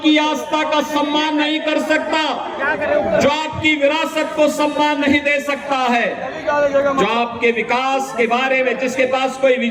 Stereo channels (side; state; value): both; identical; correlation 1.00